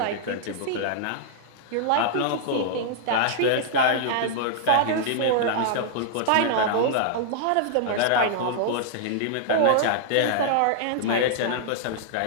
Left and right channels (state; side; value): different; both; correlation -0.01